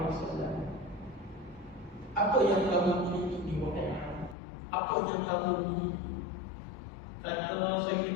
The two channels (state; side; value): drops out; right; at 4.4 s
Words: Apa yang kamu miliki di wahai? Apa yang kamu miliki? Kata